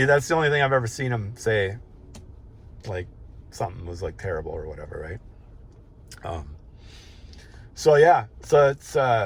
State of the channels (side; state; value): both; identical; correlation 1.00